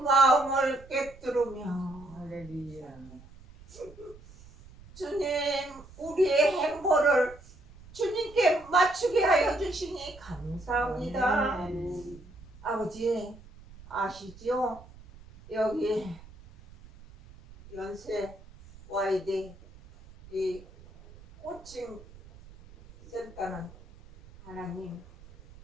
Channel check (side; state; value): right; noise; rumble, 21 dB below the sound